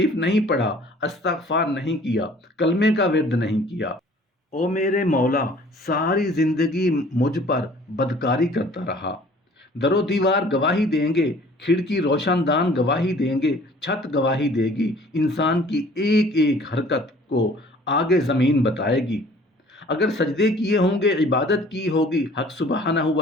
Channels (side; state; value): both; normal; correlation 0.52